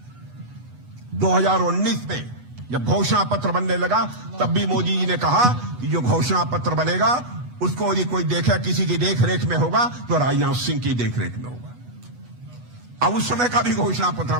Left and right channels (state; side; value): late; left; 8.2 ms